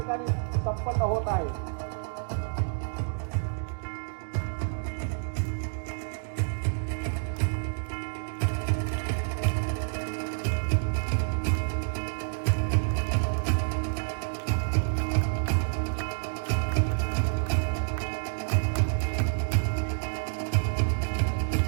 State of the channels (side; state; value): left; silent; digital silence